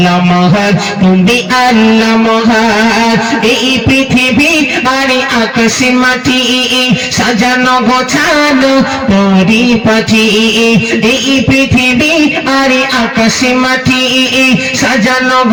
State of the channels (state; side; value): identical; both; correlation 1.00